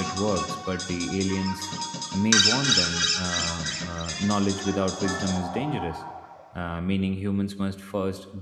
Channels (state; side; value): identical; both; correlation 1.00